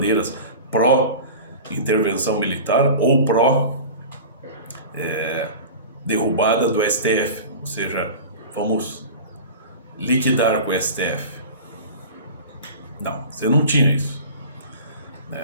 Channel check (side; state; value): both; inverted; correlation -0.35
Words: pró-intervenção militar ou pró-derrubada do STF. Ou seja, vamos liquidar com o STF. Não, você não tinha isso,